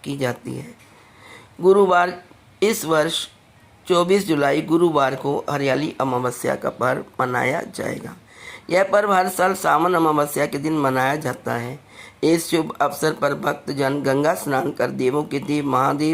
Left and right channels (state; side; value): identical; both; correlation 1.00